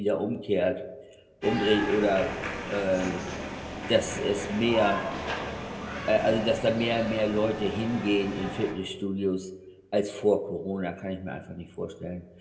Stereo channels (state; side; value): identical; both; correlation 1.00